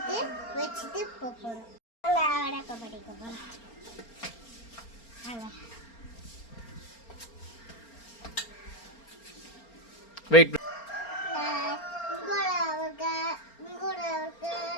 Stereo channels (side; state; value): right; late; 4.4 ms